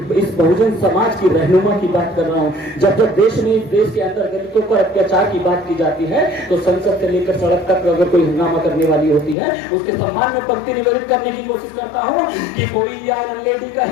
इस बहुजन समाज की रहनुमा की बात कर रहा हूं। जब जब देश के अंदर दलितों पर अत्याचार की बात की जाती है तो संसद से लेकर सड़क तक अगर कोई हंगामा करने वाली होती है, उसके सम्मान में पंक्ति निवेदित करने की कोशिश करता हूं कि कोई आयरन लेडी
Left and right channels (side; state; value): right; drops out; at 9.3 s